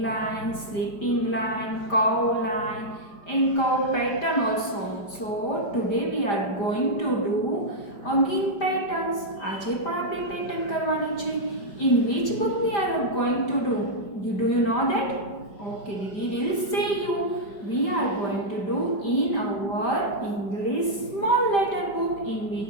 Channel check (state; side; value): late; right; 5.0 ms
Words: line, sleeping line, curve line and curve pattern also. So today we are going to do again patterns. આજે પણ આપણે pattern કરવાની છે. In which book we are going to do? Do you know that? Okay, we will say you. We are going to do in our English small letter book. In